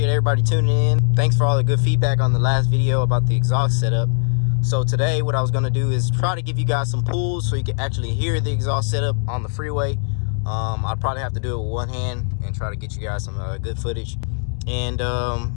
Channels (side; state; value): right; silent; 61 dB below the other